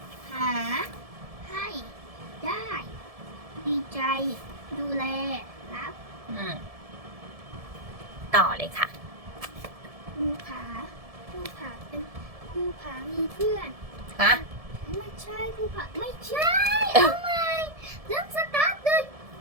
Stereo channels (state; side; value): late; left; 1.7 ms